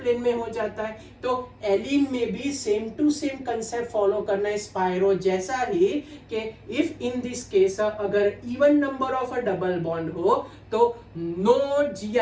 में हो जाता है। तो एलिन में भी same to same concept follow करना है स्पाइरो जैसा ही, कि इफ इन दिस केस अगर even number of a double bond हो तो नो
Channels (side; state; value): both; identical; correlation 1.00